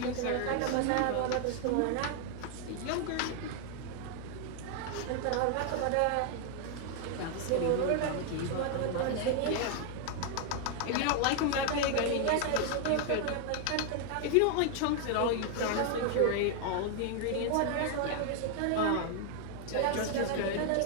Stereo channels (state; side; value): different; both; correlation 0.00